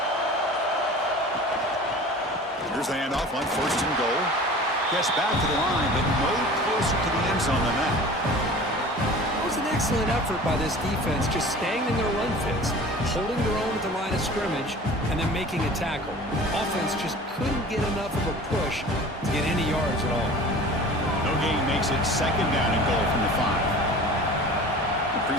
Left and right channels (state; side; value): normal; both; correlation 0.41